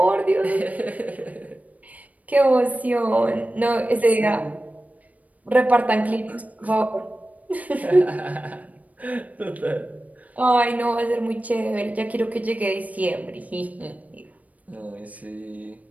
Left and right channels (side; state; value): left; late; 0.072 ms